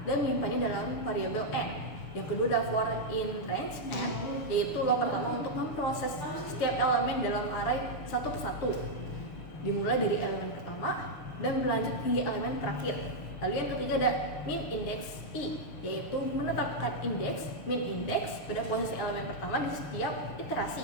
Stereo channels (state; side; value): late; right; 6.8 ms